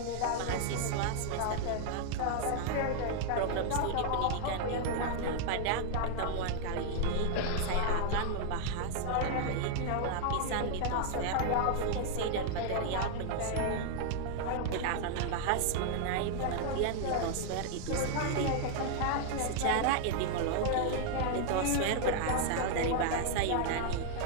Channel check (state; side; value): different; both; correlation 0.00